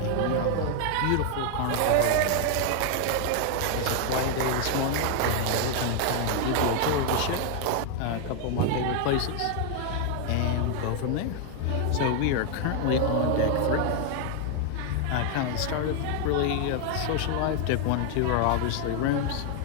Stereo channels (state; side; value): different; both; correlation 0.00